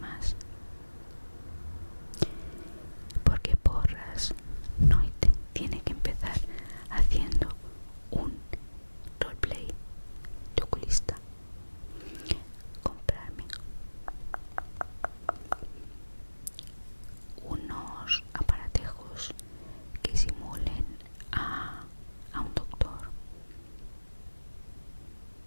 Porque Porras no tiene que empezar haciendo un roleplay de oculista. Comprarme unos aparatejos que simulen a un doctor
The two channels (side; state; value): both; inverted; correlation -1.00